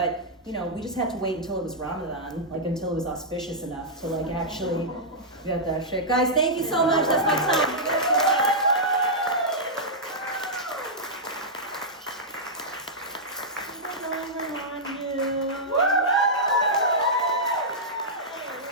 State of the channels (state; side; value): normal; both; correlation -0.10